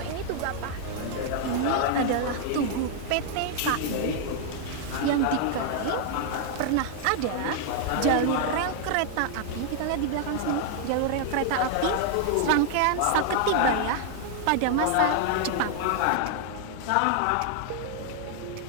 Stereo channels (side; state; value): both; different; correlation 0.00